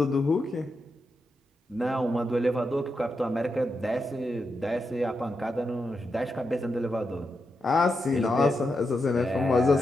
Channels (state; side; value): normal; both; correlation 0.86